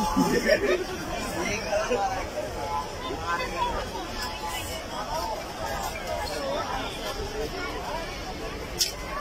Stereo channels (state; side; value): identical; both; correlation 1.00